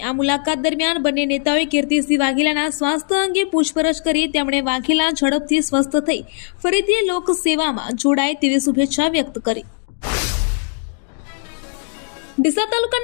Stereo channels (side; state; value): right; silent; 66 dB below the other